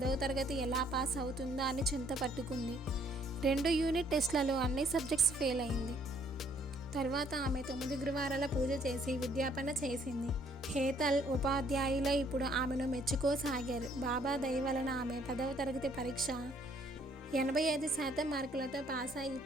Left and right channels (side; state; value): both; normal; correlation 0.64